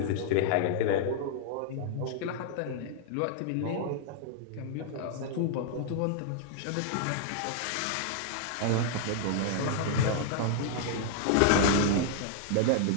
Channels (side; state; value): both; different; correlation -0.01